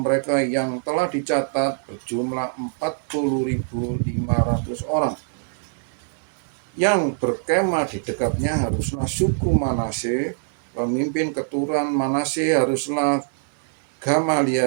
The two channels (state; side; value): silent; left; 63 dB below the other